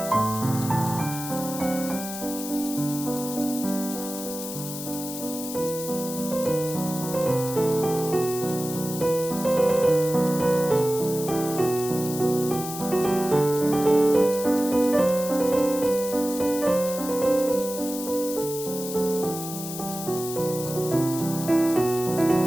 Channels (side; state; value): left; noise; hiss, 9 dB below the sound